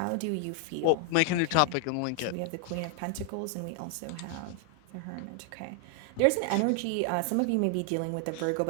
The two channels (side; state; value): both; different; correlation 0.00